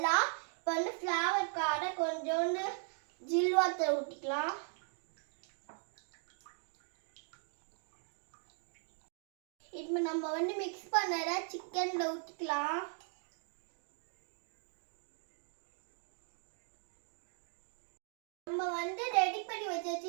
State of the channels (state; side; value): silent; left; 52 dB below the other